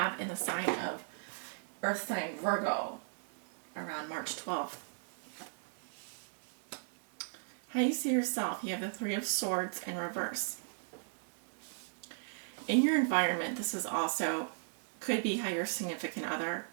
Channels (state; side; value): silent; left; digital silence